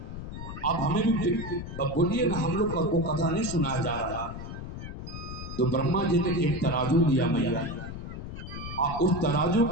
आप हमें भी बोलिए ना, हम लोग को कथा नहीं सुनाया जा रहा। तो ब्रह्मा जी ने एक तराजू लिया मैया, और उस तराजू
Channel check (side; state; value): left; noise; rumble, 9 dB below the sound